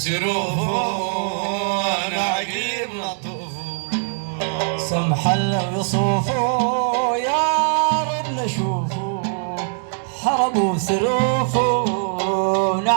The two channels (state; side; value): silent; left; digital silence